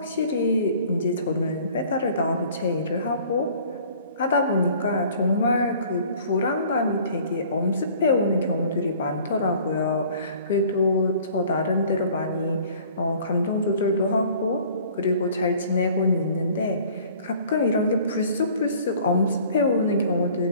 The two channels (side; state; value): both; inverted; correlation -0.52